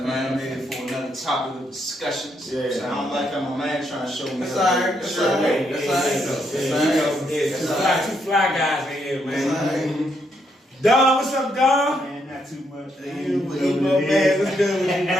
I'm here for another topic of discussions. Yeah. So I don't like how my man trying to show me. That's all right. That's all right. That's all right. Two fly guys in here, man. Don, what's up, Don? Man, not too much. You my man. What's good with you,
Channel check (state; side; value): normal; both; correlation 0.77